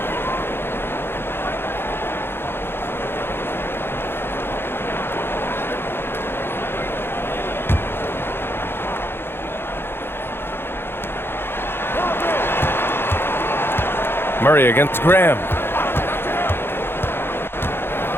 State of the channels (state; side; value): late; right; 0.11 ms